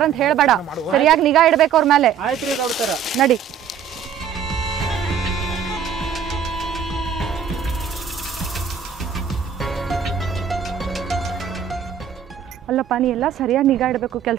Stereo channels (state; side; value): quieter; left; 7.7 dB